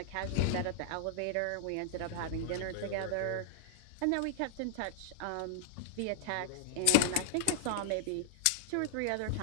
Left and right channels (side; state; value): both; different; correlation -0.01